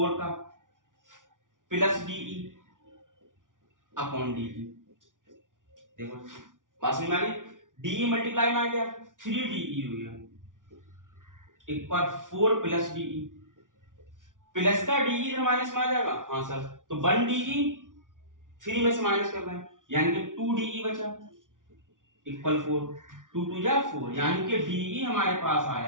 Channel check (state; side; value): late; left; 0.88 ms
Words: का, प्लस DE अपॉन DE। देखो बात समझ में आ गई। DE मल्टीप्लाई में आ गया 3DE हो गया, एक बार 4 प्लस DE, प्लस का DE इधर माइनस में आ जाएगा। हाँ सर, तो 1 DE 3 में से माइनस कर रहे हैं यानी कि 2DE बचा इक्वल 4, 2 2 जा 4, यानी कि DE हमारे पास